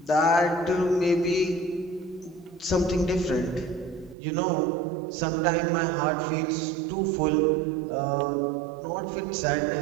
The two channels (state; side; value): drops out; left; at 4.2 s